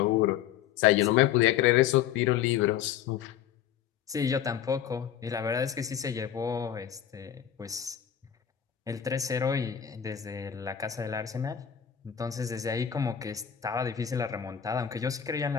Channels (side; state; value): right; quieter; 9.7 dB